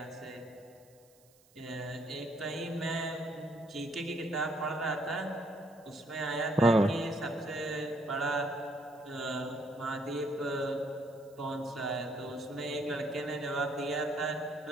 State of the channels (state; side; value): noise; right; hiss, 29 dB below the sound